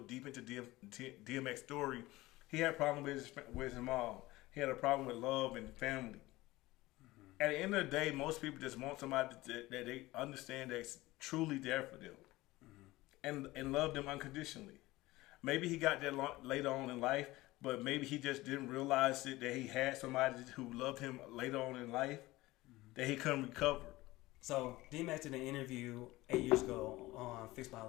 into DMX story. He had a problem with his mom. He had a problem with love and family. Mm-hmm. At the end of the day, most people just want somebody that they understand that's truly there for them, and love them unconditionally. Maybe he got that later on in life, but maybe he just didn't realize that he had somebody who loved him later on in life that he couldn't recover. So DMX did an interview 8 years ago on Fix My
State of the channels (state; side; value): quieter; right; 19.0 dB